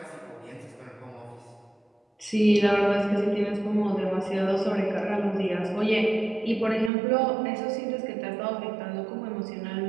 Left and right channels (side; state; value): left; drops out; at 6.9 s